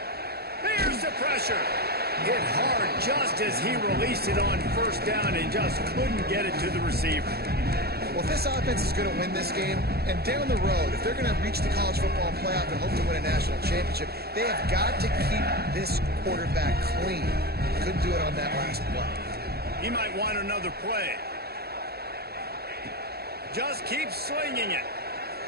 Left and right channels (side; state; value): left; late; 0.46 ms